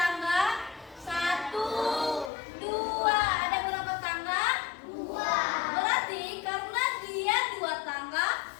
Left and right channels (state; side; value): drops out; right; at 2.3 s